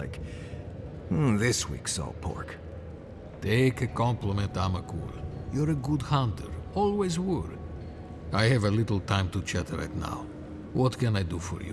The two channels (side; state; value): both; identical; correlation 1.00